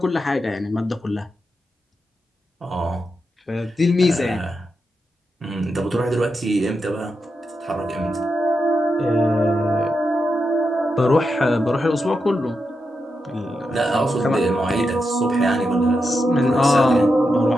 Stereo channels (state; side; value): normal; both; correlation 0.86